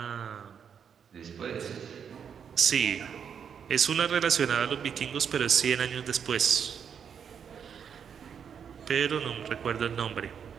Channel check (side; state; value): left; quieter; 7.5 dB